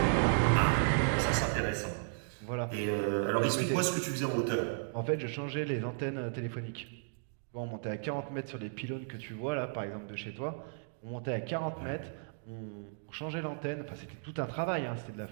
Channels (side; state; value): left; silent; digital silence